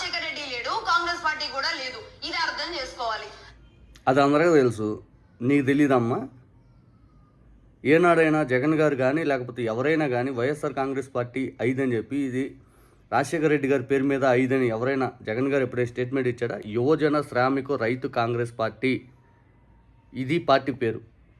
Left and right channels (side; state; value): both; identical; correlation 1.00